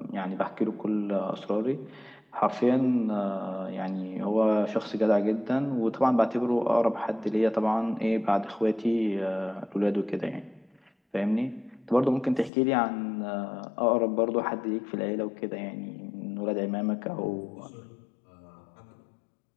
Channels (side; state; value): right; drops out; at 12.5 s